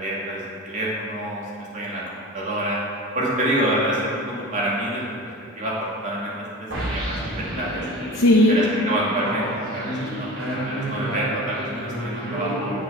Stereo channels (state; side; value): normal; both; correlation 0.33